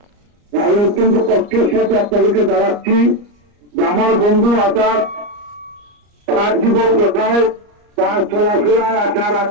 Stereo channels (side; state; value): left; late; 34 ms